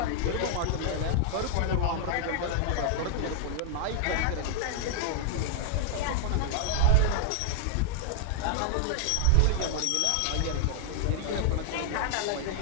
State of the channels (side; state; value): both; different; correlation 0.00